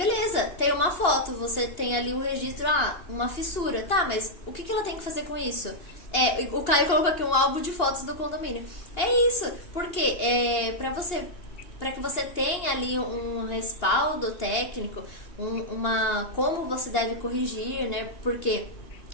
tem uma foto, você tem ali o registro, uma fissura. Tá, mas o que ela tem que fazer com isso? O Caio colocou aqui um álbum de fotos do condomínio. É isso, porque para que você tenha ali um respaldo técnico, como você deve corrigir, né? Porque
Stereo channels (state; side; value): late; right; 2.8 ms